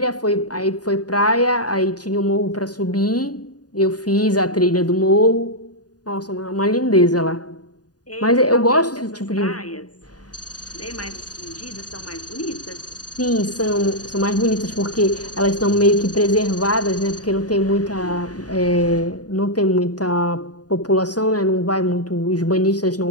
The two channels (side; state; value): right; late; 0.68 ms